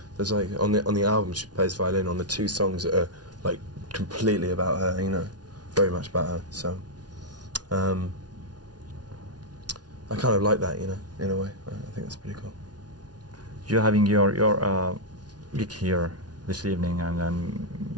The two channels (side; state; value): left; late; 0.69 ms